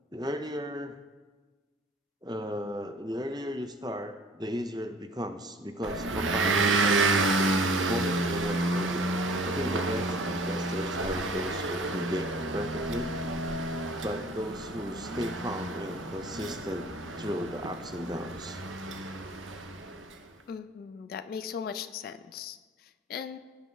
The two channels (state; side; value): normal; both; correlation 0.50